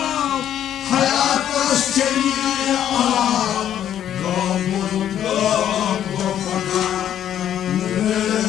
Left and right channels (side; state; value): right; quieter; 10.5 dB